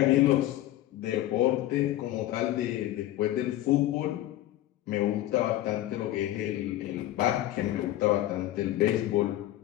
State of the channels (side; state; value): right; quieter; 14.4 dB